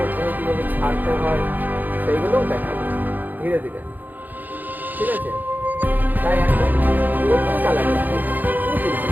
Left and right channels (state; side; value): late; left; 0.086 ms